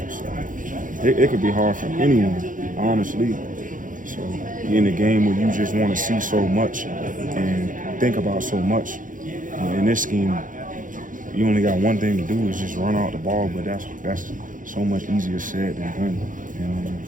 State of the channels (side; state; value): left; late; 0.38 ms